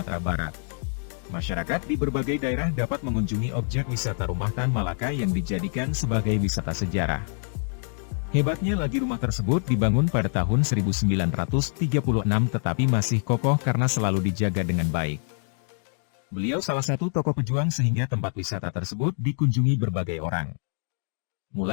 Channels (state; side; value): silent; right; 61 dB below the other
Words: Barat. Masyarakat di berbagai daerah dapat mengunjungi objek wisata Rumah Tan Malaka yang dijadikan sebagai wisata sejarah. Hebatnya lagi rumah tersebut dibangun pada tahun 1936 tetapi masih kokoh karena selalu dijaga dengan baik. Beliau salah satu tokoh pejuang sehingga tempat wisata tersebut dikunjungi berbagai orang.